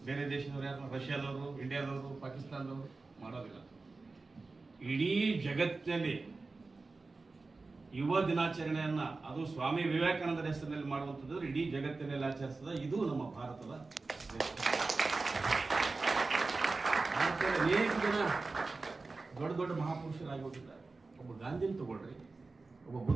ಬೇರೆ ದೇಶದವ್ರು ಯಾರು? ರಷ್ಯಾದವರು, ಇಂಡಿಯಾದವರು, ಪಾಕಿಸ್ತಾನದವರು ಮಾಡೋದಿಲ್ಲ. ಇಡೀ ಜಗತ್ತಿನಲ್ಲಿ ಯುವ ದಿನಾಚರಣೆಯನ್ನ ಅದು ಸ್ವಾಮಿ ವಿವೇಕಾನಂದರ ಹೆಸರಿನಲ್ಲಿ ಮಾಡುವಂಥದ್ದು ಇಡೀ ಜಗತ್ತಿನಲ್ಲಿ ಆಚರಿಸಿದ ಇದು ನಮ್ಮ ಭಾರತದ ಅನೇಕ ಜನ ದೊಡ್ಡ ದೊಡ್ಡ ಮಹಾಪುರುಷರಾಗಿ ಹೋಗಿದ್ದಾರೆ. ಒಬ್ಬ ಗಾಂಧಿನ ತಗೊಳ್ರಿ, ಒಬ್ಬ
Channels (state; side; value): quieter; left; 3.7 dB